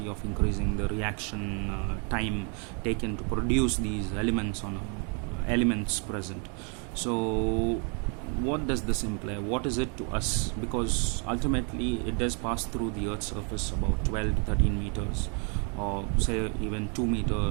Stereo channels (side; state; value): left; quieter; 37.7 dB